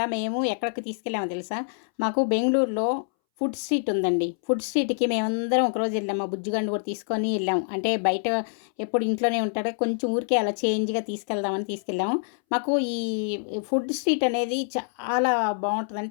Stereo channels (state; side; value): silent; right; 61 dB below the other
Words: మేము ఎక్కడికి తీసుకెళ్ళామో తెలుసా? మాకు బెంగుళూరులో ఫుడ్ స్ట్రీట్ ఉందండి. ఫుడ్ స్ట్రీట్‌కి మేమందరం ఒకరోజు వెళ్ళాం. మా బుజ్జిగాడిని కూడా తీసుకొని వెళ్ళాం. అంటే బయట ఎప్పుడు ఇంట్లోనే ఉంటాడు. కొంచెం ఊరికే అలా చేంజ్‌గా తీసుకెళ్దామని తీసుకెళ్ళాము. మాకు ఈ ఫుడ్ స్ట్రీట్ అనేది చాలా